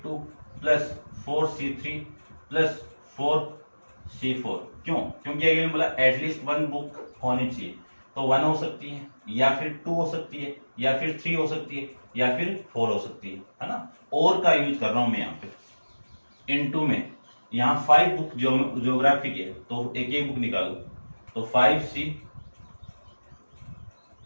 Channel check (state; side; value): inverted; both; correlation -1.00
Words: plus 4C3 plus 4C4। क्यों? क्योंकि अगले बोला एटलीस्ट 1 बुक होनी चाहिए, तो 1 हो सकती है या फिर 2 हो सकती है या फिर 3 हो सकती है या फिर 4 हो सकती है ना। और का यूज कर रहा हूं मैं यहाँ पे। इनटू में यहाँ 5 बुक ज्योग्राफी की है, तो एक एक बुक निकालो, तो 5C